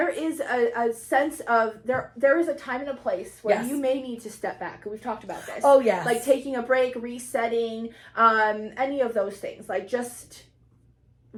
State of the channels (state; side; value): identical; both; correlation 1.00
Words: is a sense of, there is a time and a place where you may need to step back. We've talked about this. Oh, yes. Like taking a break, resetting, any of those things. Like just,